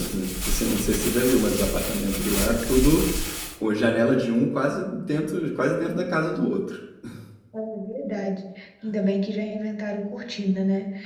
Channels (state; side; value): identical; both; correlation 1.00